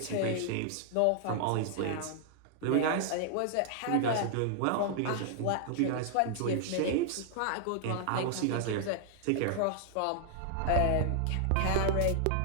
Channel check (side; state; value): both; different; correlation -0.01